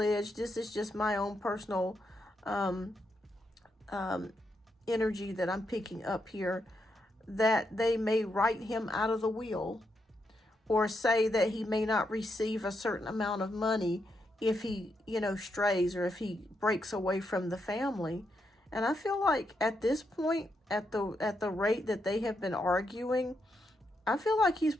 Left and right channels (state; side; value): normal; both; correlation 0.81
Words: this is just my own personal energy that I'm picking up here, that they may write him out of the will, or say that he may not receive a certain amount of money if he, strays, or if he breaks away from the family. And I feel like at this point, at the rate that they have been arguing, I feel like he's